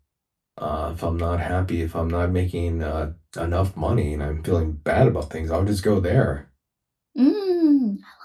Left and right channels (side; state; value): both; identical; correlation 1.00